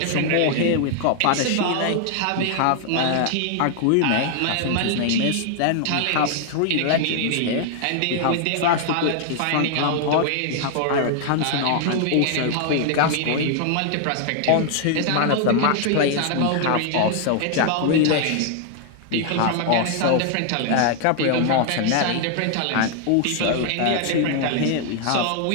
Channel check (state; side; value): different; both; correlation 0.00